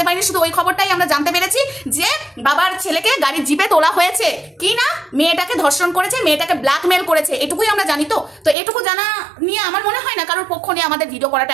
পারিনি, শুধু ওই খবরটাই আমরা জানতে পেরেছি যে বাবার ছেলেকে গাড়ির জিপে তোলা হয়েছে, কি না মেয়েটাকে ধর্ষণ করেছে, মেয়েটাকে ব্ল্যাকমেল করেছে, এটুকুই আমরা জানি। তো এটুকু জানা নিয়ে আমার মনে হয় না কারোর পক্ষ নিয়ে আমাদের ভিডিও করাটা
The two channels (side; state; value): left; drops out; at 8.6 s